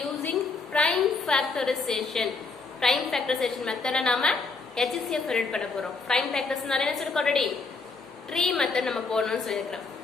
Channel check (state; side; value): quieter; right; 4.2 dB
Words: prime factorization. Prime factorization method நாம HCF read பண்ண போறோம். Prime factorization என்ன சொல்லிருக்கோம் already? Tree method நம்ம போடணும்னு சொல்லிருக்கோம்.